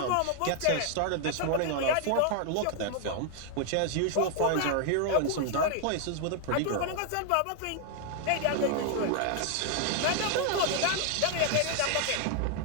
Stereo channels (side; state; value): both; different; correlation 0.00